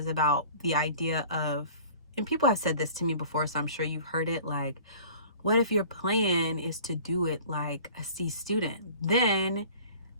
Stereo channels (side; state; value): both; inverted; correlation -0.46